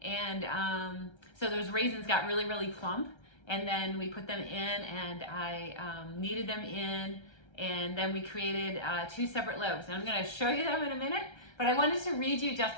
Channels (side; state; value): right; late; 1.3 ms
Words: and so those raisins got really, really plump. And then we put them in, and I kneaded them in, and then we created 2 separate loaves. And I'm going to show you them in a minute, but I wanted to read you